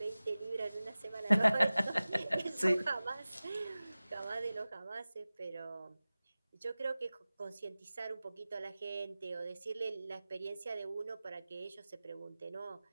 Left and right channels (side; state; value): both; inverted; correlation -0.97